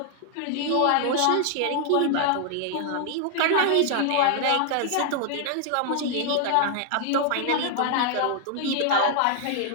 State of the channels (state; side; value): different; both; correlation 0.00